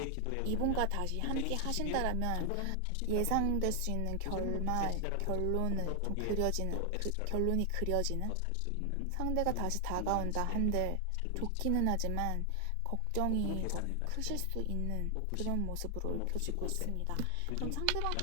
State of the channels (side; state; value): both; different; correlation 0.00